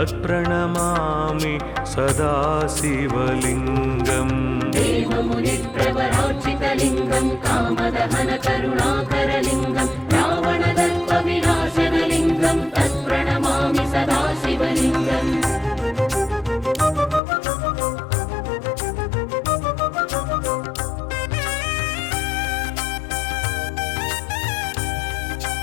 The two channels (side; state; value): right; drops out; at 17.2 s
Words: सदा शिवलिङ्गम् देवमुनिप्रवरार्चितलिङ्गं कामदहनकरुणाकरलिङ्गं रावणदर्पविनाशनलिङ्गं तत्प्रणमामि सदा शिवलिङ्गम्